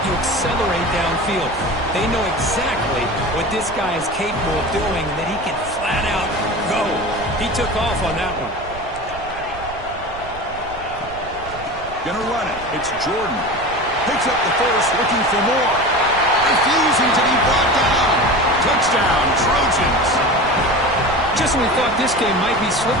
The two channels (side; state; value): right; noise; rumble, 16 dB below the sound